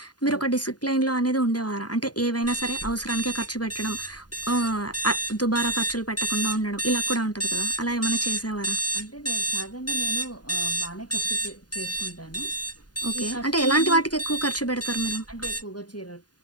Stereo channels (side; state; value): right; late; 0.69 ms